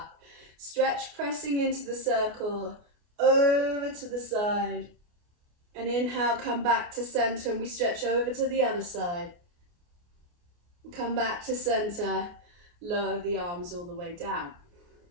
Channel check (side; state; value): left; late; 29 ms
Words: Stretch, pressing into the circle, over to the side. And inhale, come back to center, and we stretch over to the other side. Come back to center, lower the arms all the way down.